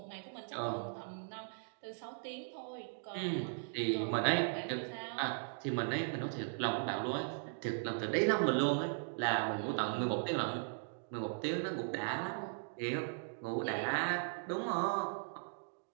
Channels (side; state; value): left; silent; digital silence